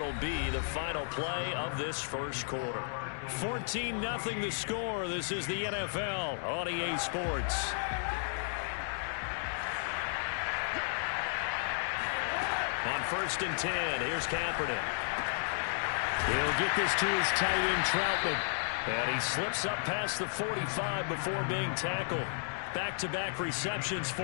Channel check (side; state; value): right; silent; digital silence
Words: be the final play of this first quarter. 14-0 the score. This is the NFL on EA Sports. On 1st and 10, here's Kaepernick. He'll get this to his tight end, Troutman. And he slips up past the 45 before being tackled. Back-to-back receptions for